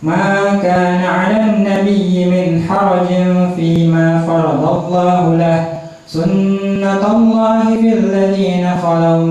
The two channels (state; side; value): identical; both; correlation 1.00